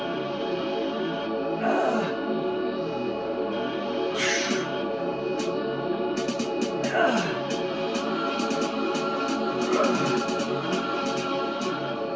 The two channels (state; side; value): identical; both; correlation 1.00